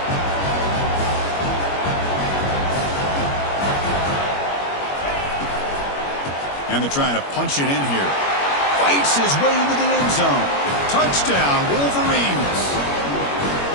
And they're trying to punch it in here. Fights his way into the end zone. Touchdown, Wolverines.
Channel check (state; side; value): late; right; 21 ms